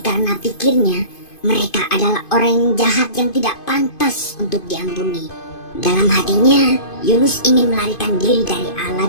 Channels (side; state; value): right; late; 2.5 ms